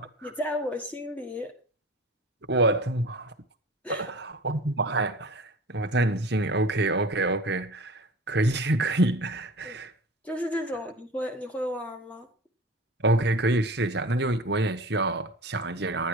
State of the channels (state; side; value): normal; both; correlation 0.37